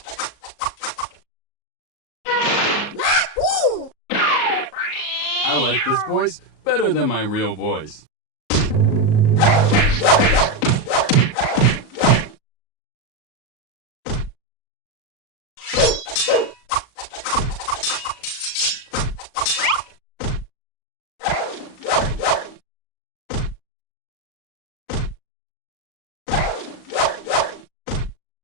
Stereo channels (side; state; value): right; late; 38 ms